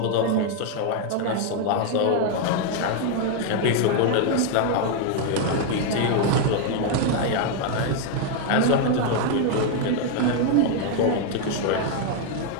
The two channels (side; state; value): both; different; correlation 0.00